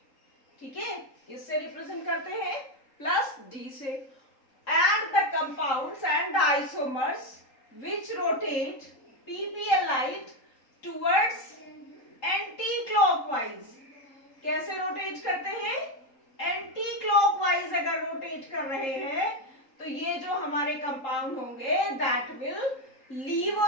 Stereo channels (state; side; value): late; right; 3.8 ms